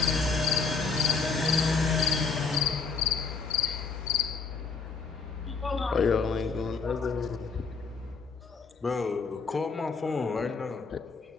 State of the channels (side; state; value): right; quieter; 4.8 dB